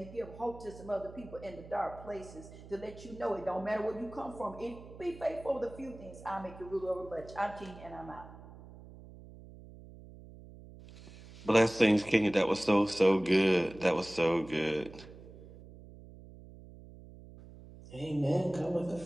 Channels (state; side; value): noise; right; hum, 18 dB below the sound